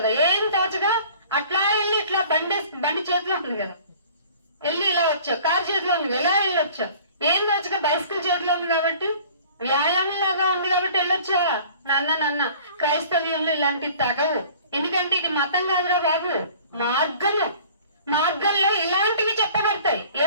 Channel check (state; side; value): inverted; both; correlation -0.48